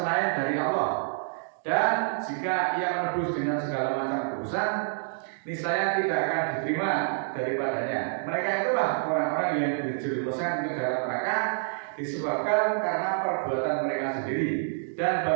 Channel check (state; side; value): silent; left; digital silence